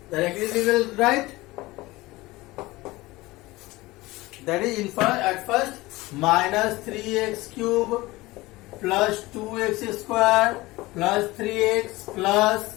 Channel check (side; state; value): right; quieter; 20.1 dB